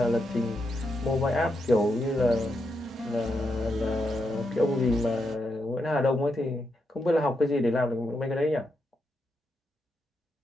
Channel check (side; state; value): both; normal; correlation 0.83